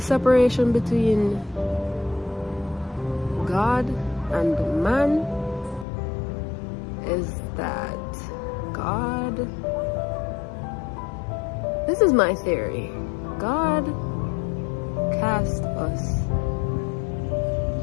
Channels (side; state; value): right; drops out; at 5.9 s